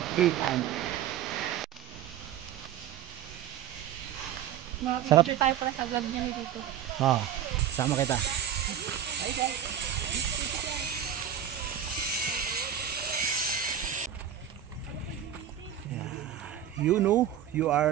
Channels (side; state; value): left; quieter; 10.0 dB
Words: Sarap. Tayo pala sa vlog niya dito. Oh, sama kita. You know, you